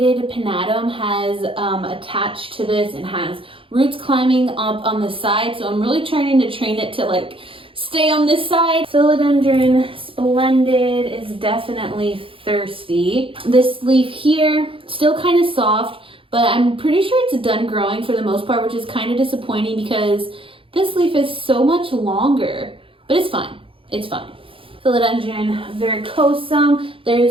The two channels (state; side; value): late; left; 0.26 ms